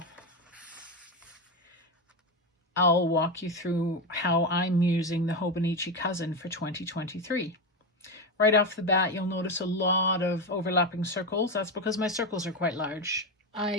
I'll walk you through how I'm using the Hobonichi Cousin for 2023. Right off the bat, you'll notice a lot of overlapping circles. That's because my circles are quite large.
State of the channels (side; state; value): both; normal; correlation 0.14